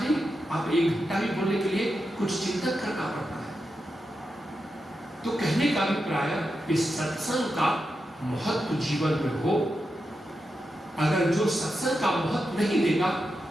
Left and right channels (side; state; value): both; normal; correlation 0.88